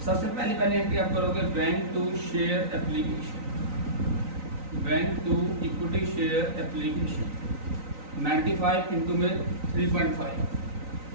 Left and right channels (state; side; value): late; left; 3.9 ms